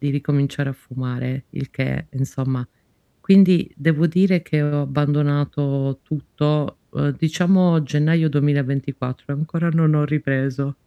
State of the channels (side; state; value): both; identical; correlation 1.00